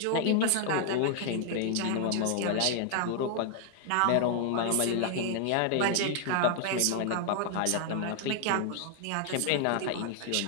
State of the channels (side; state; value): both; different; correlation 0.00